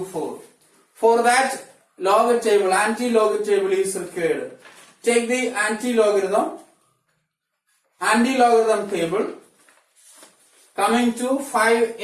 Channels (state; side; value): identical; both; correlation 1.00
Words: For that, anti-log table is required. Take the anti-logarithm table coming to